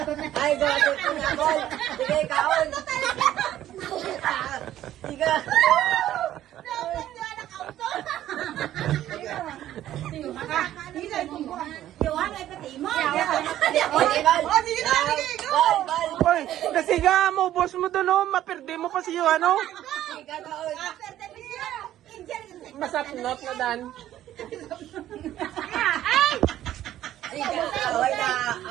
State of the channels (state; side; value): quieter; left; 12.7 dB